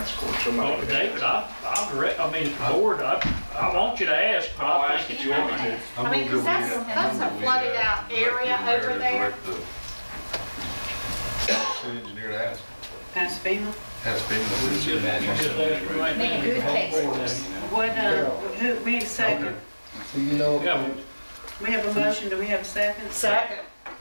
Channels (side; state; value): both; inverted; correlation -1.00